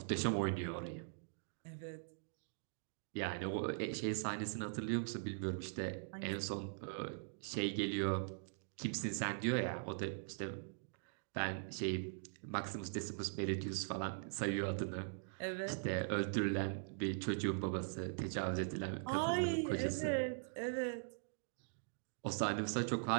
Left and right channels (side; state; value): left; silent; digital silence